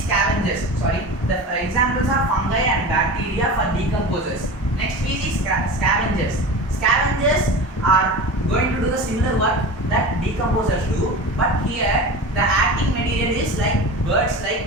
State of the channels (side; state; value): both; normal; correlation 0.31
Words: The examples are fungi and bacteria for decomposers. Next we see scavengers. Scavengers are going to do the similar work that decomposers do, but here the acting material is like birds